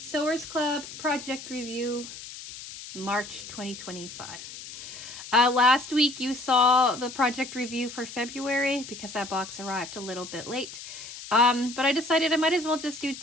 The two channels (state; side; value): noise; left; hiss, 12 dB below the sound